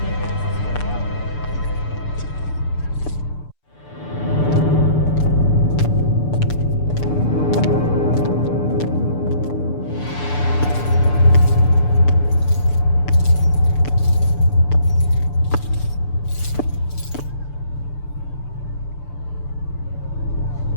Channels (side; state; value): right; late; 6.8 ms